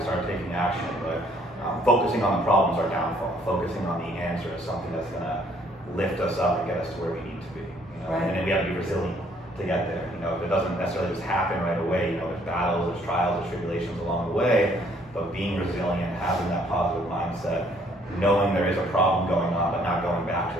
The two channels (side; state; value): both; normal; correlation 0.63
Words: Start taking action. But focusing on the problem is our downfall. Focusing on the answer is something that's going to lift us up and get us to where we need to be. You know? Right. And then we have to be resilient to get there. You know, it doesn't necessarily just happen right away. You know, there's battles, there's trials, there's tribulations along the way. But being resilient, having that positive mindset, knowing there is a problem going on, but not going back